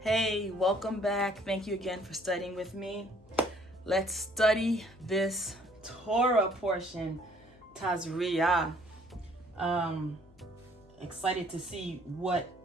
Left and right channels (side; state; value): left; noise; hum, 27 dB below the sound